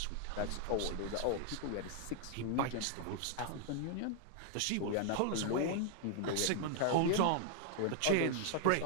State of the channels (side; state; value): both; different; correlation 0.00